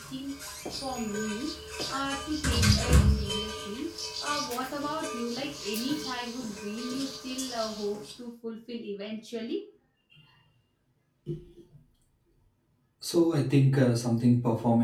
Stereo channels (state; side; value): identical; both; correlation 1.00